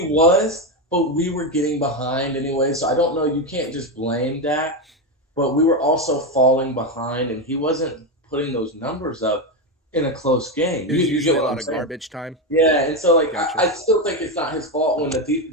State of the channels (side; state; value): both; normal; correlation 0.11